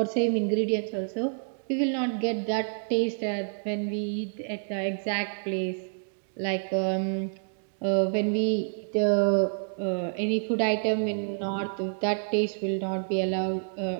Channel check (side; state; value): left; silent; digital silence